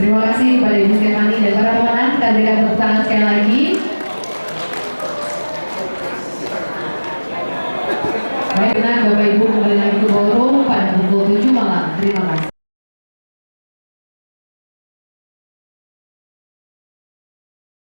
Terima kasih kepada Ibu Stefani dan para pemenang. Kita berikan tepuk tangan sekali lagi. Baik, benar Bapak Ibu kembali lagi ke ballroom pada pukul 7 malam. Terima kasih.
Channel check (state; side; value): inverted; both; correlation -1.00